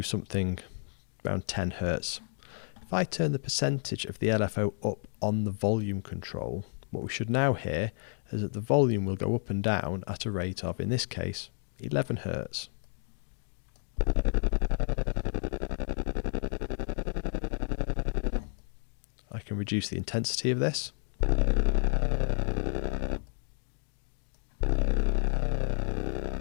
something around 10 Hertz, if I turn the percentage of the LFO up on the volume control, what we should now hear is that the volume will go up and down at a rate of, in this case, 11 Hertz. I can reduce the intensity of this.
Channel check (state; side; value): silent; right; digital silence